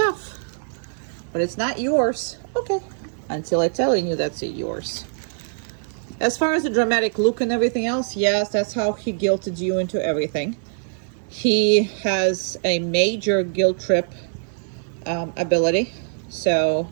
but it's not yours. Okay, until I telling you that's yours. As far as the dramatic look and everything else, yes, that's how he guilted you into everything. He has a major guilt trip ability. So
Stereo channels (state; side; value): silent; left; digital silence